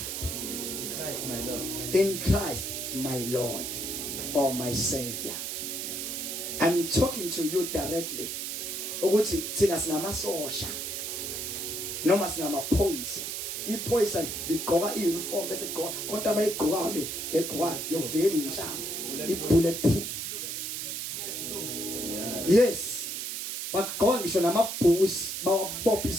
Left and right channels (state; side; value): noise; right; hiss, 4 dB below the sound